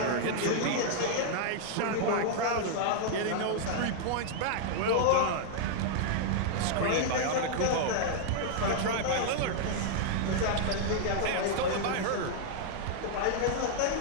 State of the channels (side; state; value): both; different; correlation -0.01